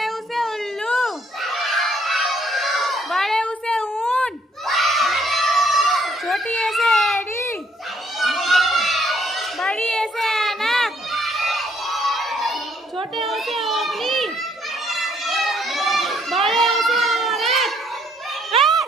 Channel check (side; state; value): both; normal; correlation 0.67